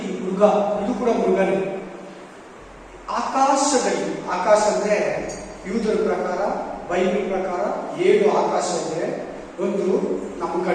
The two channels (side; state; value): both; identical; correlation 1.00